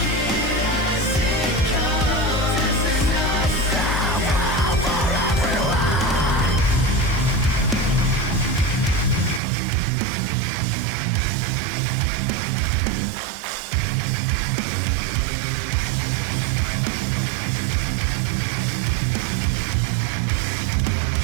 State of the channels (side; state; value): left; drops out; at 9.4 s